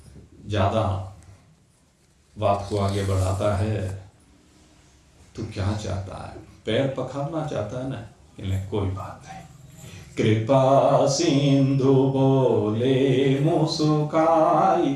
ज्यादा बात को आगे बढ़ाता है, तू क्या चाहता है? पैर पखारना चाहता है ना? कोई बात नहीं। कृपा सिंधु बोले मुस्काई,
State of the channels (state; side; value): identical; both; correlation 1.00